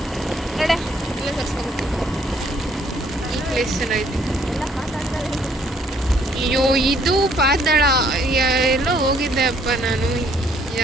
ನೋಡೆ ಇಲ್ಲ ತರ್ಸ್ಕೊಬೇಕು. ಈ ಪ್ಲೇಸ್ ಚೆನ್ನಾಗಿದೆ. ಅಯ್ಯೋ ಇದು ಪಾತಾಳ. ಎಲ್ಲೋ ಹೋಗಿದ್ದೆ ಅಪ್ಪ ನಾನು,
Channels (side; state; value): both; normal; correlation 0.65